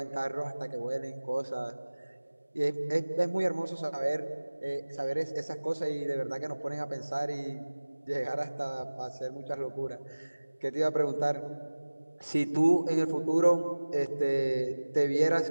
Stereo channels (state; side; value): inverted; both; correlation -1.00